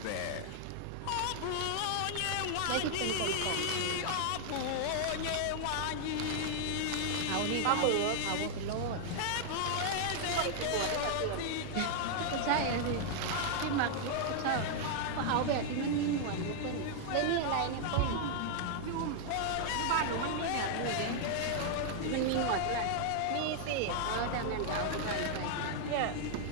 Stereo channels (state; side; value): different; both; correlation -0.01